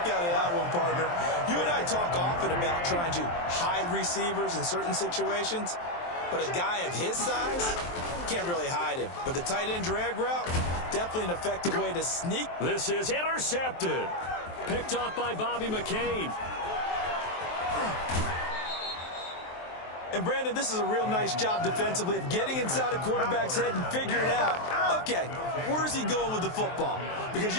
out of that one, partner. You and I talk often about trying to hide receivers in certain situations, but a guy of his size can't really hide him. But the tight end drag route, definitely an effective way to sneak. This is intercepted. Picked off by Bobby McCain. And, Brandon, this is a real nice job defensively of getting inside a quarterback's head and figuring out, okay, where's he going with the football? Because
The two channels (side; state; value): right; late; 23 ms